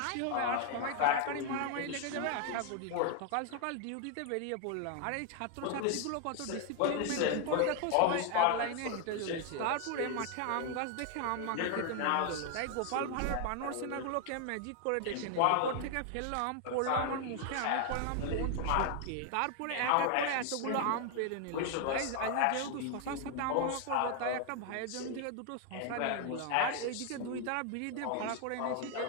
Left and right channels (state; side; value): different; both; correlation 0.00